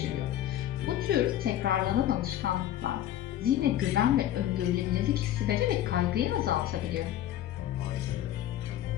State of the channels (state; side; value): quieter; right; 12.2 dB